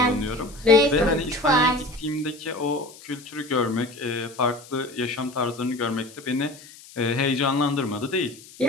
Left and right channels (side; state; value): left; noise; hiss, 20 dB below the sound